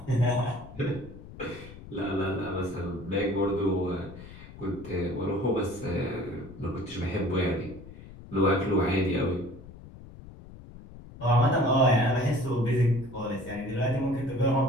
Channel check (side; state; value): left; noise; rumble, 16 dB below the sound